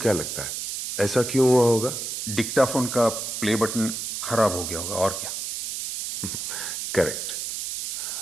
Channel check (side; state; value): right; noise; hiss, 5 dB below the sound